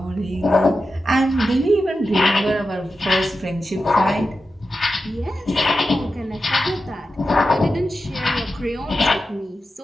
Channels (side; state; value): both; normal; correlation 0.91